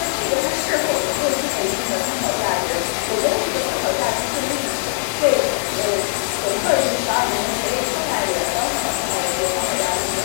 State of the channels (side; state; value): right; silent; digital silence